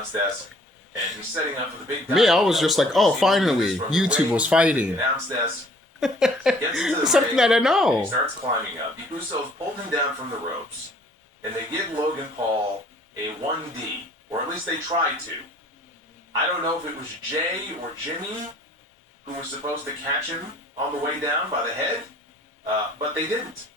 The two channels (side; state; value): both; normal; correlation 0.57